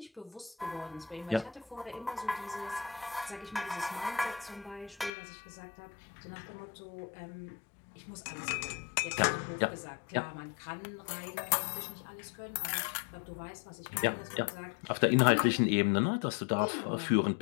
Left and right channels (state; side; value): drops out; right; at 5.1 s